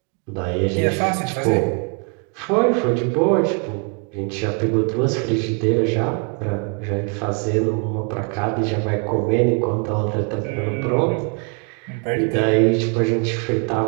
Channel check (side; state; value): left; quieter; 36.4 dB